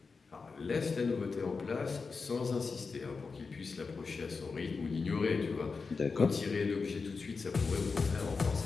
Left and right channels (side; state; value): right; quieter; 4.7 dB